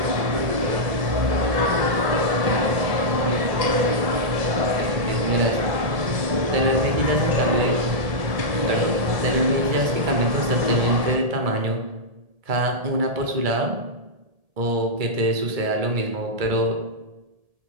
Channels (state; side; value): late; left; 1.7 ms